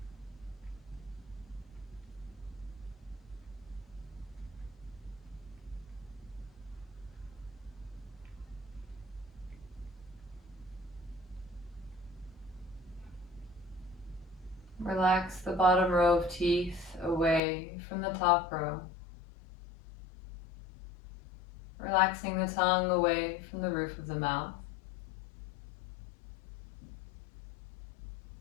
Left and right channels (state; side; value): drops out; right; at 17.4 s